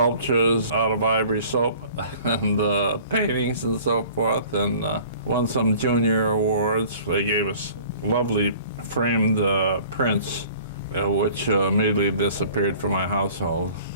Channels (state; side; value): inverted; both; correlation -0.49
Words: out of ivory soap and paintings and so forth, and won some junior awards. They gave us lovely framed prints, which immediately disappeared from my household.